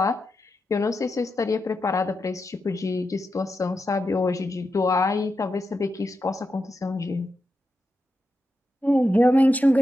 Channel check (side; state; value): both; normal; correlation 0.88